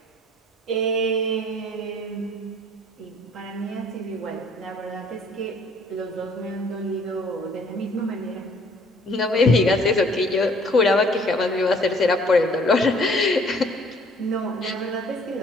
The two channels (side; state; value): both; normal; correlation 0.57